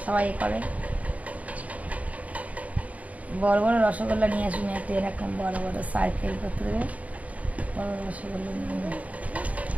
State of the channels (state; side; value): late; left; 0.070 ms